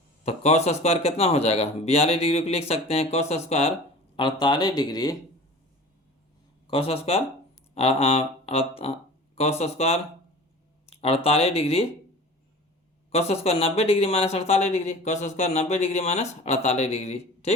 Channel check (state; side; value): normal; both; correlation 0.39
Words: तो कॉस स्क्वायर कितना हो जाएगा 42 डिग्री को लिख सकते हैं cos square 48 degree, cos square cos square 48 degree, cos square 90 degree minus 48 degree, cos square 90 degree minus 48 degree,